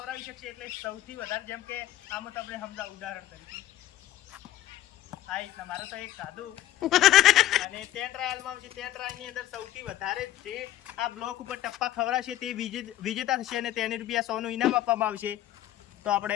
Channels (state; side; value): quieter; right; 13.7 dB